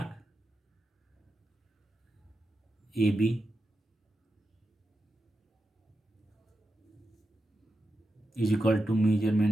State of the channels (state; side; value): normal; both; correlation 0.89